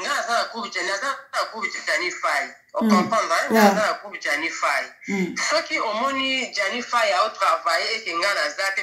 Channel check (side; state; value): both; identical; correlation 1.00